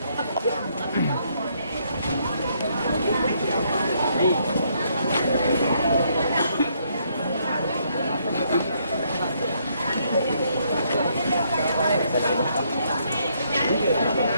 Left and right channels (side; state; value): both; inverted; correlation -0.72